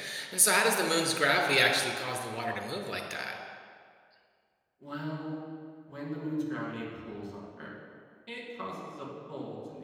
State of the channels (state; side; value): identical; both; correlation 1.00